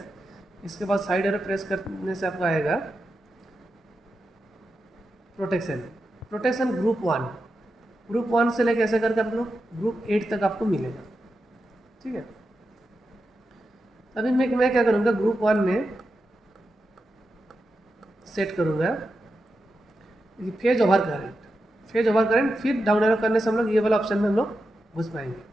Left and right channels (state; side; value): normal; both; correlation 0.89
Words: इसके बाद साइड एरो प्रेस करने से आपका आएगा प्रोटेक्शन। प्रोटेक्शन ग्रुप वन से लेकर ऐसे करके आप लोग ग्रुप 8 तक आपको मिलेगा। ठीक है, अभी मैं क्या करूँगा, ग्रुप 1 में सेट करूँगा फेज ओवर करंट। फिर डाउन एरो करने से हम लोग ये वाला ऑप्शन में हम लोग घुस पाएंगे।